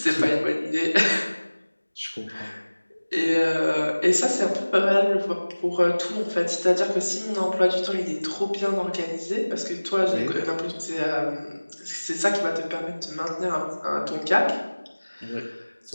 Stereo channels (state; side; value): inverted; both; correlation -1.00